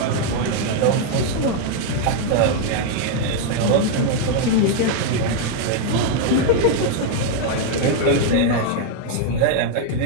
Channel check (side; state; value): both; different; correlation 0.00